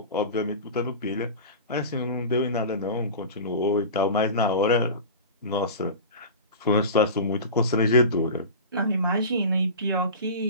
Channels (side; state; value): both; inverted; correlation -0.31